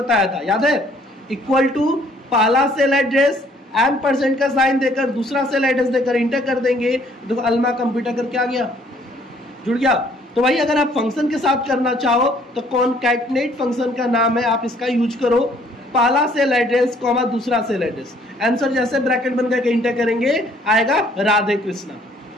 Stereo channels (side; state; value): both; normal; correlation 0.61